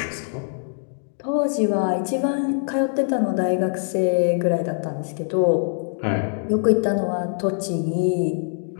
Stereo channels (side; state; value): right; silent; digital silence